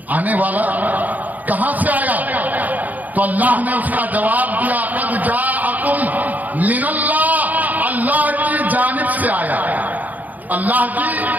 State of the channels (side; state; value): left; late; 0.080 ms